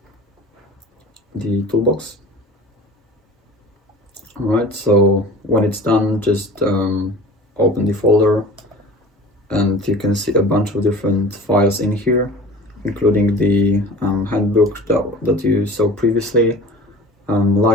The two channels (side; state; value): both; normal; correlation 0.41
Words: toolbox. Alright, so when it's done, just open the folder, and you can see a bunch of different files in here, including the handbook that you saw previously,